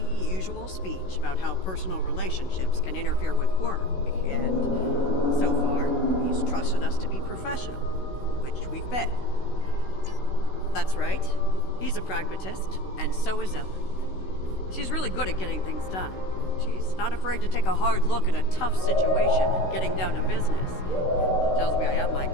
speech about how personal relationships can interfere with work, and so far, he's trusted us to be professional, which we've been. That's right. He's a pragmatist, and so is Ellen. She's really good at getting things done. She's not afraid to take a hard look at a tough situation and getting down to business. She tells me I have my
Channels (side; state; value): right; late; 16 ms